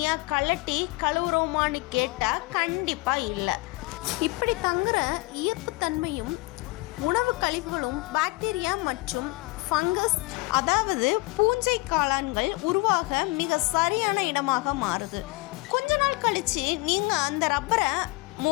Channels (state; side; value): quieter; right; 23.2 dB